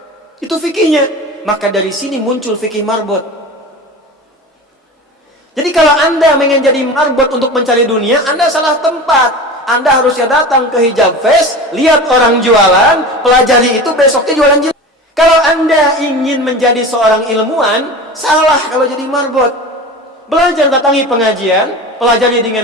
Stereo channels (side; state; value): both; normal; correlation 0.32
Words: Itu fikihnya. Maka dari sini muncul fikih marbot. Jadi kalau Anda ingin jadi marbot untuk mencari dunia, Anda salah tempat. Anda harusnya datang ke Hijab Fest, lihat orang jualan, pelajari itu, besoknya jualan jilbab. Kalau Anda ingin menjadi seorang ilmuwan, salah kalau jadi marbot. Belajar, datangi pengajian, pelajari